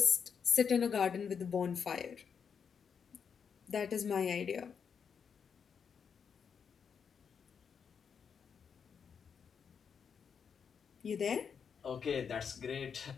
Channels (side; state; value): right; quieter; 6.7 dB